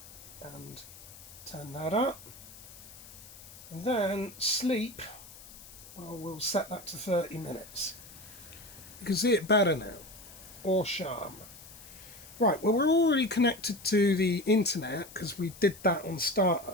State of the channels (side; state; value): left; noise; hiss, 18 dB below the sound